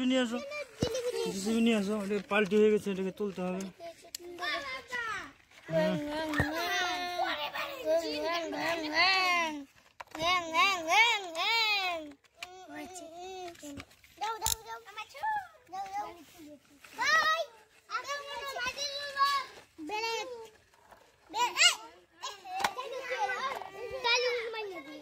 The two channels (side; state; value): both; identical; correlation 1.00